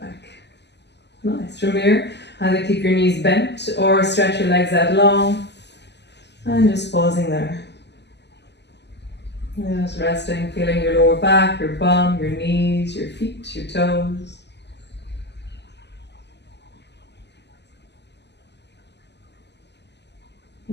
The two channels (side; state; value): right; late; 0.50 ms